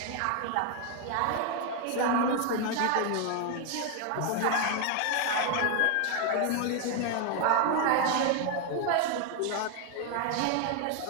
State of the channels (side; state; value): both; different; correlation 0.01